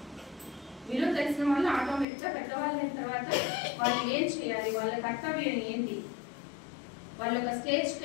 విలువ తెలిసిన వాళ్ళు ఆటోమేటిక్గా పెద్దవాళ్ళు అయిన తర్వాత వాళ్ళు ఏం చేయాలి, వాళ్ళ కర్తవ్యం ఏంటి, వాళ్ళ ఒక స్టేజ్కి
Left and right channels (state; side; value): drops out; right; at 2.1 s